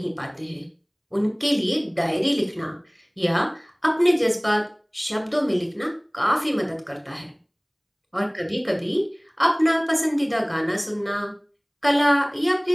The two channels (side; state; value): both; identical; correlation 1.00